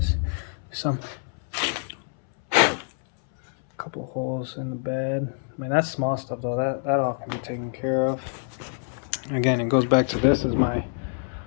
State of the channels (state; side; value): silent; right; 61 dB below the other